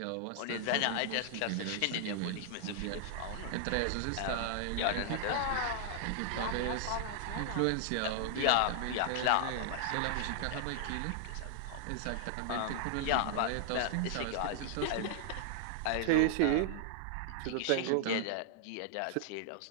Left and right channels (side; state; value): both; different; correlation -0.01